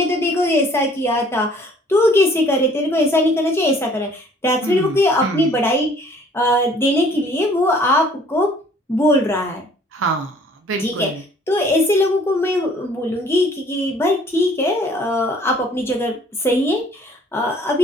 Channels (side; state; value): both; normal; correlation 0.56